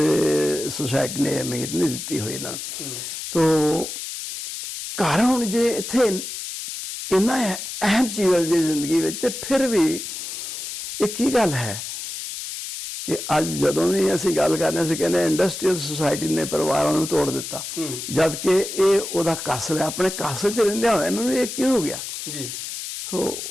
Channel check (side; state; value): left; noise; hiss, 7 dB below the sound